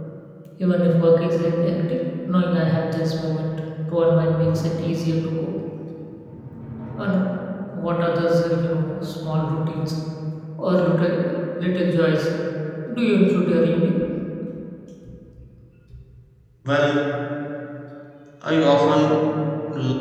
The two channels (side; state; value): both; identical; correlation 1.00